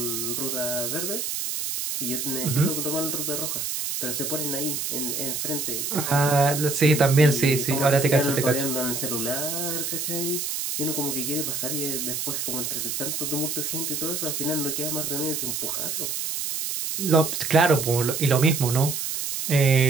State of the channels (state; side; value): noise; right; hiss, 3 dB below the sound